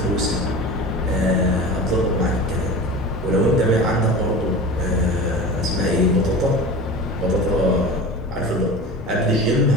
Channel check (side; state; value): both; normal; correlation 0.33